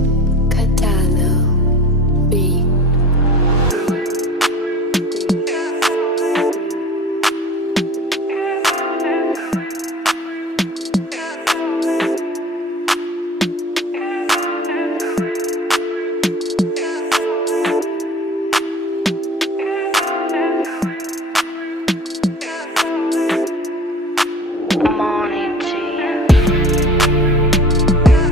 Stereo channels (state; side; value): normal; both; correlation 0.44